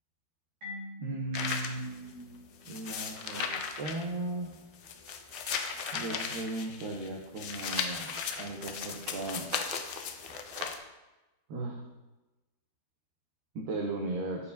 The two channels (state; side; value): late; left; 12 ms